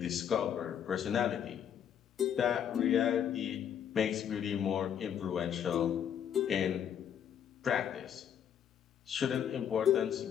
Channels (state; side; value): quieter; right; 8.9 dB